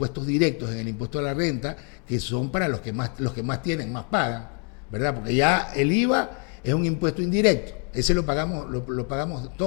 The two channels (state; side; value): quieter; right; 39.8 dB